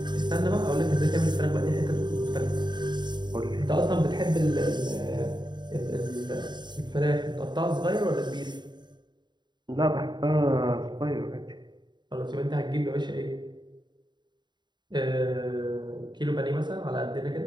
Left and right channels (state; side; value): late; left; 0.21 ms